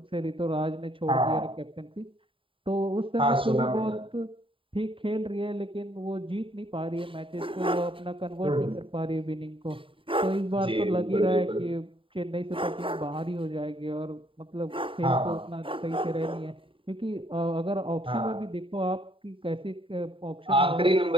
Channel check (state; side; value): late; left; 0.25 ms